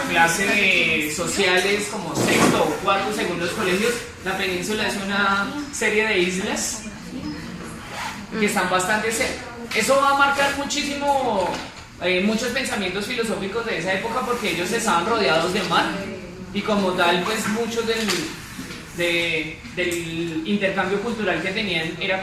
clase de sociales como sexto o cuarto según los colegios, la península es una serie de islas que están bastante cerca. Eso va a marcar muchísimo muchos pensamientos filosóficos de esa época porque ellos estaban rodeados de mar y como tal pues muchos del intercambio cultural que tenían era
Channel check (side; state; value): both; identical; correlation 1.00